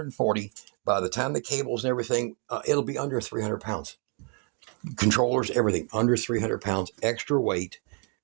By the time the cables and everything, it'll be under 300 pounds. Controllers, everything, under 300 pounds, extra weight.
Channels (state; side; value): quieter; left; 37.8 dB